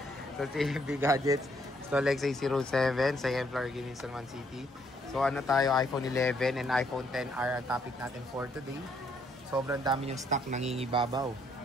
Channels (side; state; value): both; normal; correlation 0.70